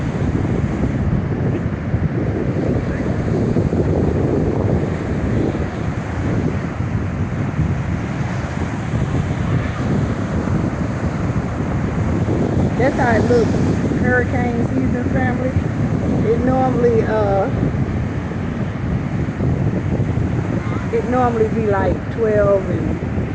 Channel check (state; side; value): identical; both; correlation 1.00